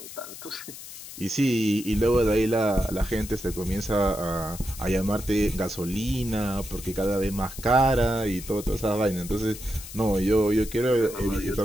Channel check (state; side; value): noise; left; hiss, 13 dB below the sound